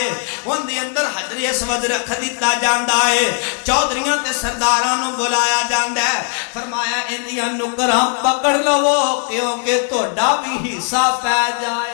ان دی اندر حجر اسود رکھ دیتا جاندہ ہے چودھریاں تے سردارانوں بلایا جاندہ ہے فرمایا اندیاں نکراں پکڑ لو کیونکہ توڑا بھی حصہ پہ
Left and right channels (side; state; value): right; quieter; 39.6 dB